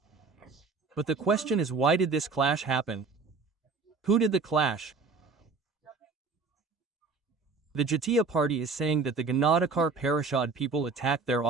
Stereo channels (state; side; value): quieter; left; 4.3 dB